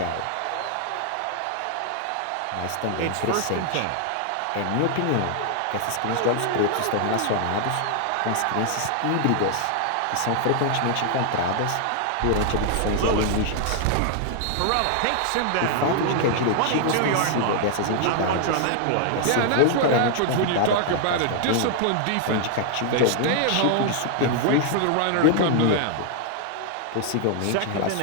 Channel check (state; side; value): different; both; correlation 0.00